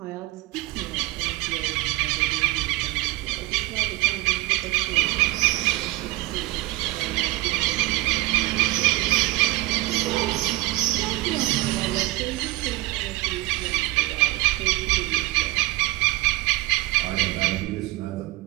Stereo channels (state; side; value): quieter; left; 18.7 dB